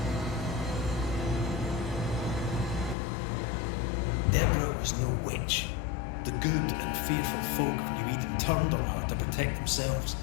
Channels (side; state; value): right; drops out; at 3.0 s